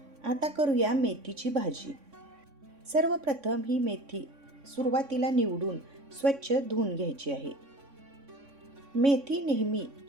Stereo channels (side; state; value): left; late; 3.6 ms